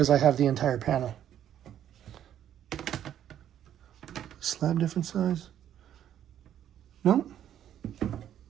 I have the entire panel. Slab different size? No, they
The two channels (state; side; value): quieter; left; 10.5 dB